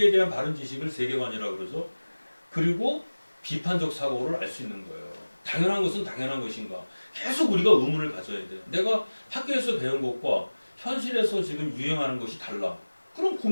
대한 바른 지식을 세계관이라고 그러죠. 그리고 비판적 사고를 알 수 있는 거예요. 당연한 것은 당연한 것인가. 계속 우리가 의문을 가져야 돼요. 내가 학교에서 배운 것과 현실에서 지금 유행하는 것이 달라. 그럼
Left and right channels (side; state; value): both; inverted; correlation -1.00